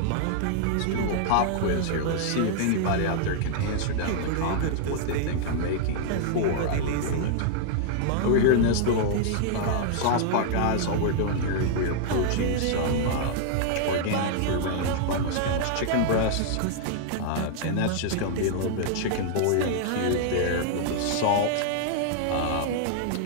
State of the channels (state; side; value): different; both; correlation -0.01